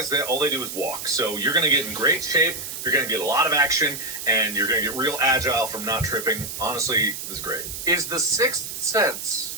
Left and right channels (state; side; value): noise; right; hiss, 7 dB below the sound